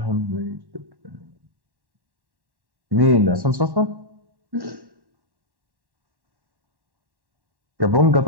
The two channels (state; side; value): late; left; 1.1 ms